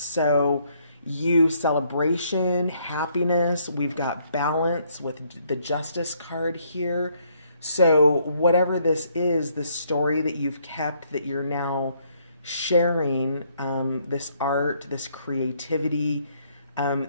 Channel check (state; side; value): inverted; both; correlation -0.69